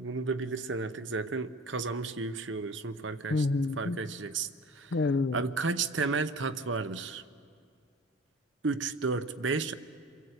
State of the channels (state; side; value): normal; both; correlation 0.40